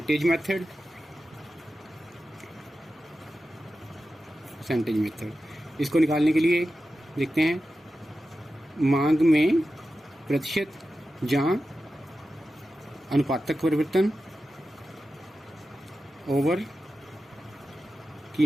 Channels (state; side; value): normal; both; correlation 0.92